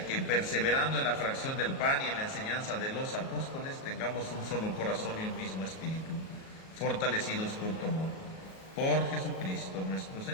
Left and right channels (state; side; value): late; right; 37 ms